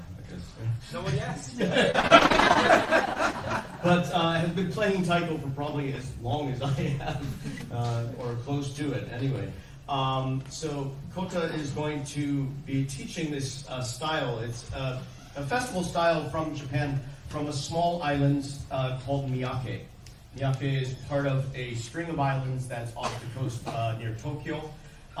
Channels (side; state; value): both; identical; correlation 1.00